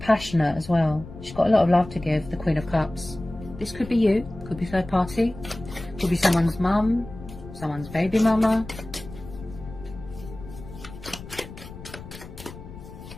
as well. She's got a lot of love to give, the Queen of Cups. This could be you, could be third party, could be someone's mum, someone's baby mama.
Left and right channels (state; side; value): noise; left; rumble, 14 dB below the sound